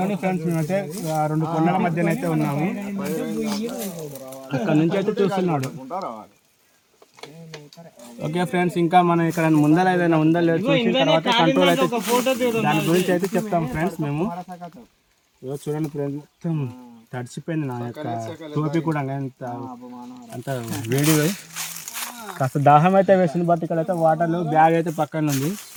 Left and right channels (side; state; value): both; identical; correlation 1.00